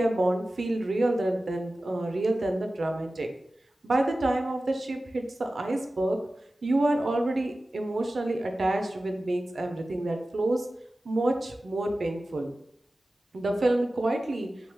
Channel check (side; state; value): both; normal; correlation 0.95